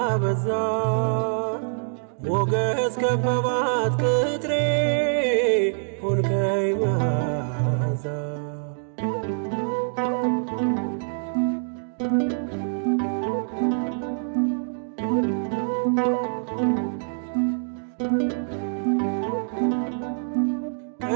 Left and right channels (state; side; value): silent; left; digital silence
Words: በዛ። ሞገስ ከበባት ቅጥሬ ሆንከኝ መዓዛ።